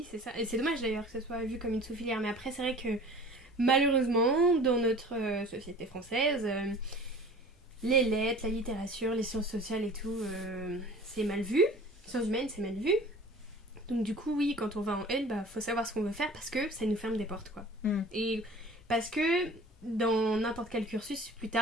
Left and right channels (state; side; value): normal; both; correlation 0.44